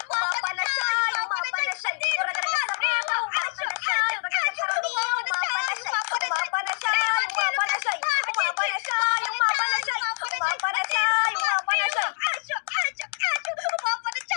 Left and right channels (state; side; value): silent; right; digital silence